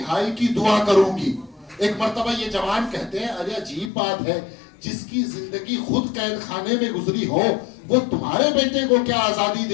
کی دعا کروں گی. ایک مرتبہ یہ جوان کہتے ہیں ارے عجیب بات ہے, جس کی زندگی خود قید خانے میں گزری ہو وہ تمہارے بیٹے کو کیا آزادی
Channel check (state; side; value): drops out; right; at 3.9 s